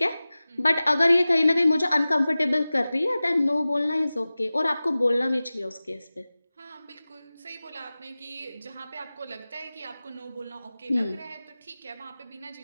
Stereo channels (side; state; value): both; inverted; correlation -0.97